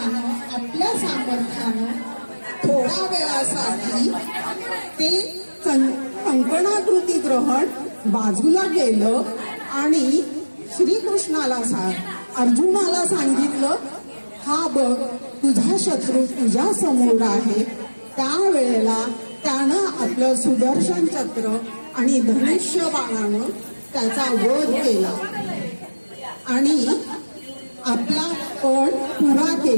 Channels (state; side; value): inverted; both; correlation -1.00